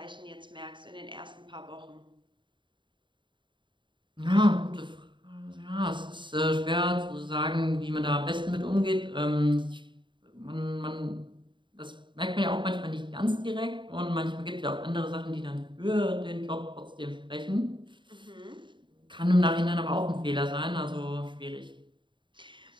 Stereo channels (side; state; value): left; late; 0.23 ms